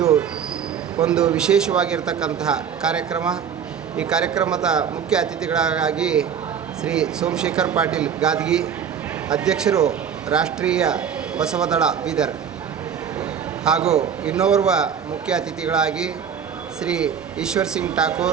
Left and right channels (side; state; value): left; quieter; 7.7 dB